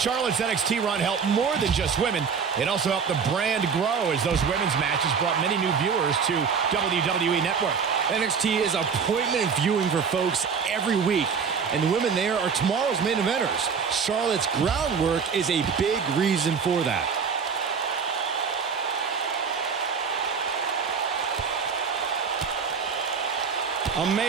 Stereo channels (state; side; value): quieter; left; 6.1 dB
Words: NXT run helped more than just women. It also helped the brand grow as those women's matches brought many new viewers to WWE Network. NXT is appointment viewing for folks every week, and the women there are tomorrow's main eventers. Charlotte's groundwork is a big reason for that.